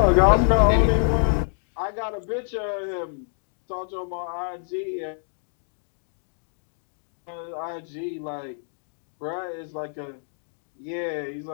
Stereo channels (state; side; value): silent; right; digital silence